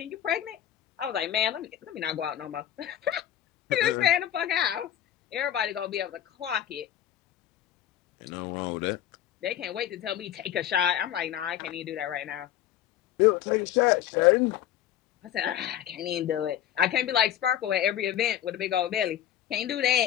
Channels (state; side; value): quieter; right; 11.3 dB